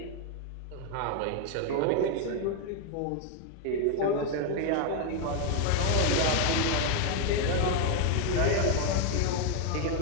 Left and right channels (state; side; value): different; both; correlation 0.01